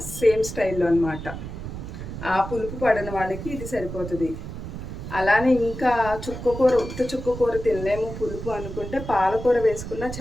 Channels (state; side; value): noise; right; rumble, 9 dB below the sound